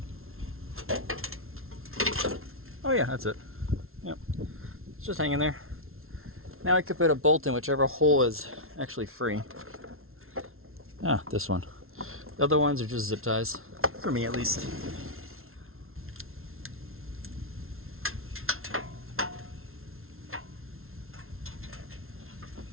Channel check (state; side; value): late; left; 0.62 ms